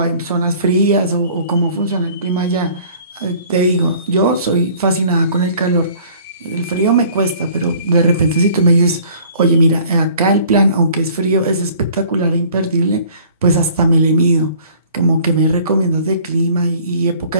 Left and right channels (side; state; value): both; inverted; correlation -0.53